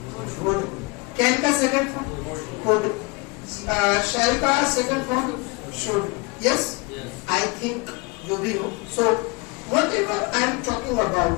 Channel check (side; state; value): right; quieter; 27.2 dB